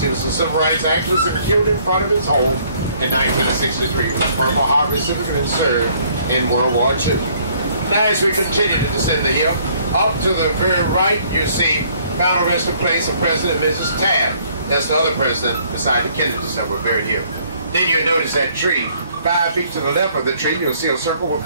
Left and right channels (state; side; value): inverted; both; correlation -0.62